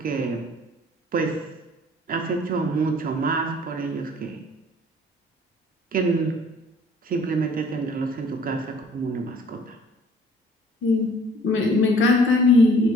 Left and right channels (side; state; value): both; normal; correlation 0.54